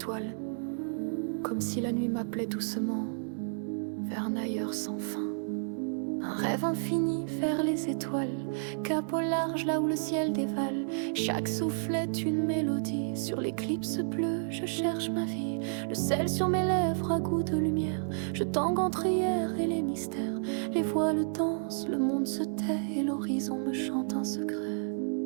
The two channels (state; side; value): silent; left; 57 dB below the other